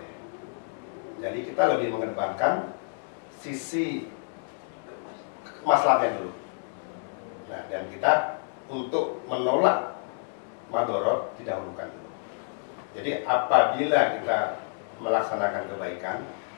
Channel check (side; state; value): right; silent; 59 dB below the other